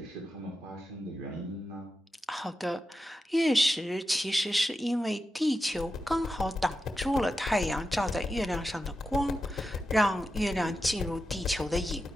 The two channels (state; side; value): normal; both; correlation 0.89